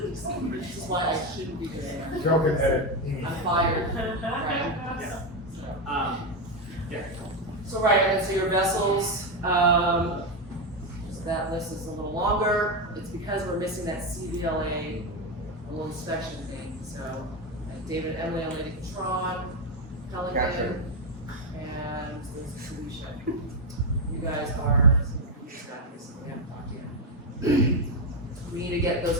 is why I shouldn't be doing it. Joking, Ed. I'm fired. Right. Yeah. Yeah. So right, and then so your vessels, list is a little longer, it's because we're missing that CVLA little inspection thing, so David and Emily on Lady Patron, Pelican, and there's Felicia. You guys are some of the staffers, so we haven't talked yet. We need to get those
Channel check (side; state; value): both; normal; correlation 0.08